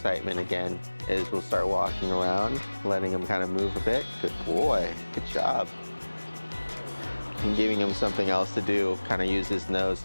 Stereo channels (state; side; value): inverted; both; correlation -1.00